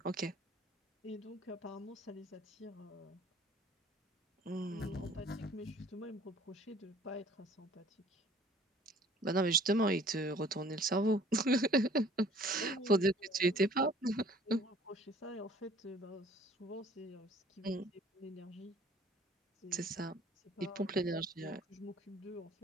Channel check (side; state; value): both; normal; correlation 0.53